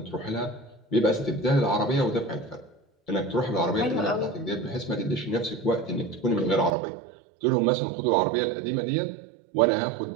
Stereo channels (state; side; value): drops out; left; at 6.8 s